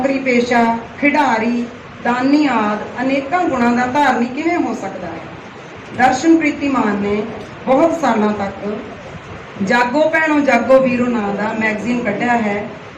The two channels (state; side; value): identical; both; correlation 1.00